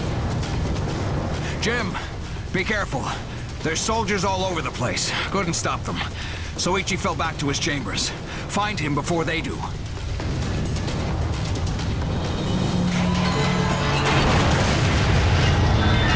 Jim, be careful. There's soldiers all over the place. Couldn't stop them. Soichi fell back to his chambers. Find him before they do.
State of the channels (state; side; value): identical; both; correlation 1.00